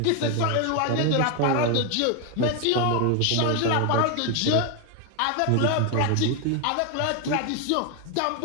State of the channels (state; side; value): different; both; correlation 0.01